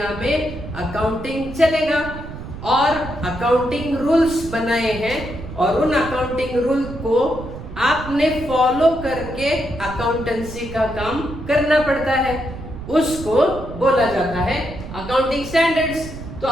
में अकाउंटिंग चलेगा। और अकाउंटिंग रूल्स बनाए हैं और उन अकाउंटिंग रूल को आपने फॉलो करके अकाउंटेंसी का काम करना पड़ता है, उसको बोला जाता है अकाउंटिंग स्टैंडर्ड्स। तो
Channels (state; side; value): noise; right; rumble, 11 dB below the sound